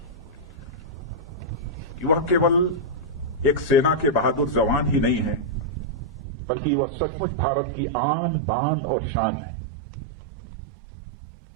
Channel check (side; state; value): left; drops out; at 6.2 s